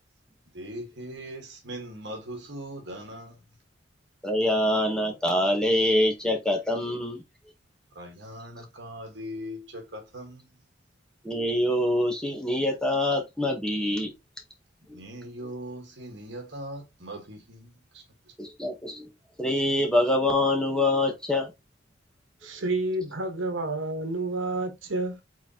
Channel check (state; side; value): normal; both; correlation 0.50